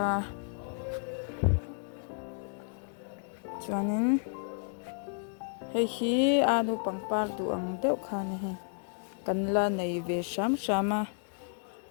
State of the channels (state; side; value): silent; right; digital silence